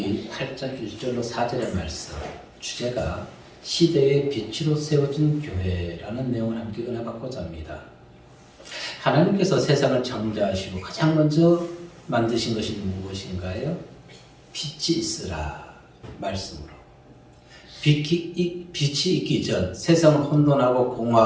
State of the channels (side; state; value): both; identical; correlation 1.00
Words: 8장 1절로 4절의 말씀 주제가 시대의 빛으로 세워진 교회라는 내용을 함께 은혜받고자 합니다. 하나님께서 세상을 창조하시고 가장 먼저 만드신 것이 무엇인가요? 빛이 있으라 말씀으로. 빛이 있기 전 세상은 혼돈하고